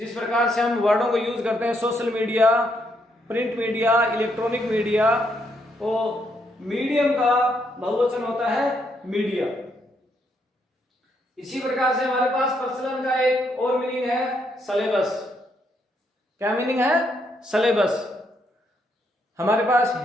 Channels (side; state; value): both; normal; correlation 0.75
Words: प्रकार से हम वर्डों को यूज करते हैं social media, print media, electronic media, तो मीडियम का बहुवचन होता है मीडिया। इसी प्रकार से हमारे पास प्रचलन का एक और मीनिंग है सिलेबस। क्या मीनिंग है? सिलेबस। हमारे पास